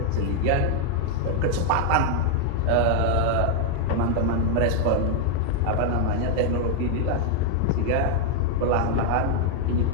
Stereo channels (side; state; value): both; different; correlation 0.00